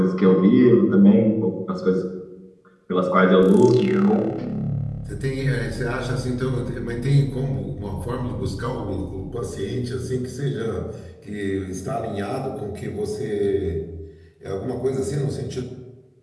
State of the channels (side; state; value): both; identical; correlation 1.00